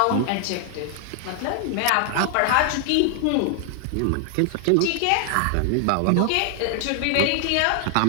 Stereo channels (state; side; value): different; both; correlation 0.00